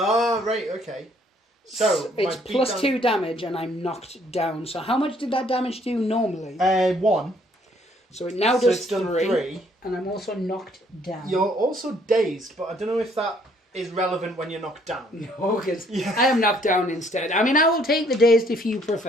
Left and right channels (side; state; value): both; normal; correlation 0.64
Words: right, okay. So, it's plus 2 damage and I'm knocked down. So how much did that damage do normally? 1. So it now does it's done 3. And I'm also knocked down. You're also dazed, but I don't know if that is relevant when you're knocked down. No, because I am knocked down instead. I mean, I will take the dazed if you